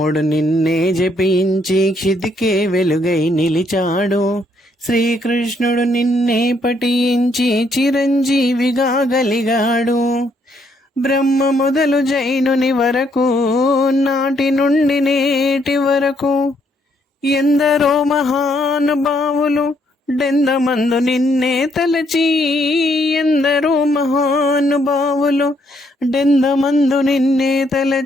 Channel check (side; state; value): both; normal; correlation 0.71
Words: నిన్నే జపించి క్షితికే వెలుగై నిలిచాడు. శ్రీకృష్ణుడు నిన్నే పఠించి చిరంజీవిగా గలిగాడు. బ్రహ్మ మొదలు జైనుని వరకు, నాటి నుండి నేటి వరకు ఎందరో మహానుభావులు డెందమందు నిన్నే తలచి. ఎందరో మహానుభావులు డెందమందు నిన్నే